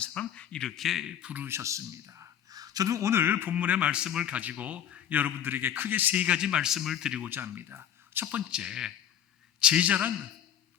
이렇게 부르셨습니다. 저는 오늘 본문의 말씀을 가지고 여러분들에게 크게 세 가지 말씀을 드리고자 합니다. 첫 번째, 제자란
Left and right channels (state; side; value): quieter; right; 10.0 dB